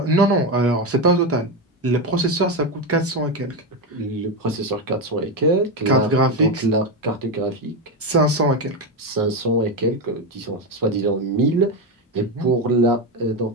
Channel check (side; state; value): both; normal; correlation 0.12